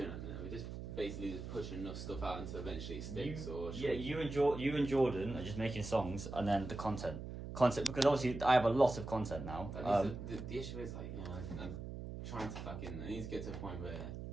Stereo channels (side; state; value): right; noise; hum, 8 dB below the sound